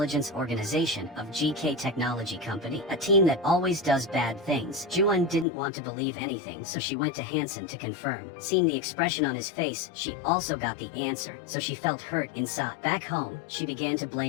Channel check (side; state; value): right; drops out; at 5.5 s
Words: organization of GK Technology Company, a team that always does bad things. Ju-eun didn't want to believe anything, so she went to Hansen to confirm. Seeing the expression on his face, she also got the answer, so she felt hurt inside. Back home, she began to